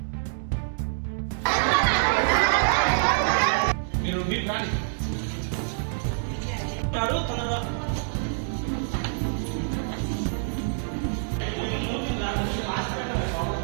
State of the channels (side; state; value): left; silent; digital silence